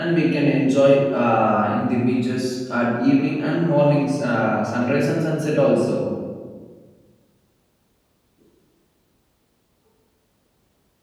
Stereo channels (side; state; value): both; identical; correlation 1.00